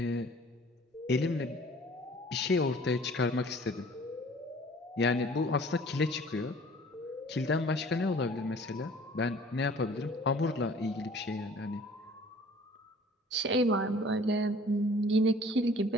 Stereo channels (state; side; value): normal; both; correlation 0.50